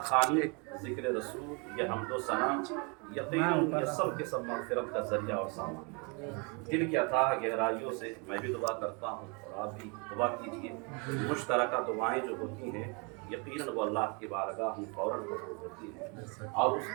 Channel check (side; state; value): left; quieter; 32.8 dB